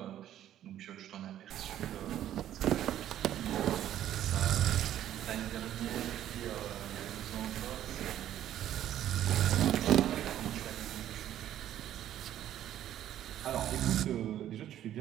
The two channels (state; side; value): quieter; left; 11.7 dB